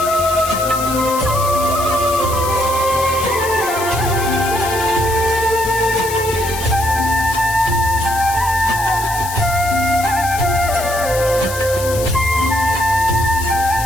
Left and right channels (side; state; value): left; noise; hiss, 9 dB below the sound